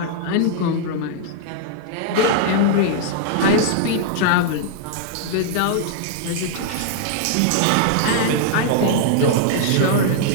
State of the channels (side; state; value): both; different; correlation -0.01